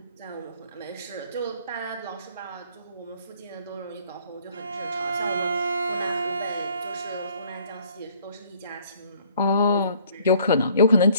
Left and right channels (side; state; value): both; inverted; correlation -0.59